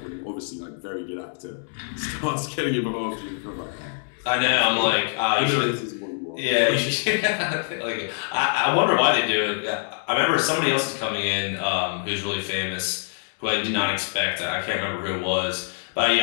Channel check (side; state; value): right; silent; digital silence